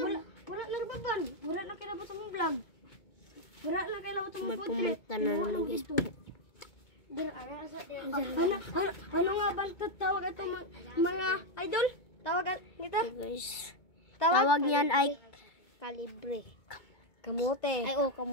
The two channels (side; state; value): right; late; 2.2 ms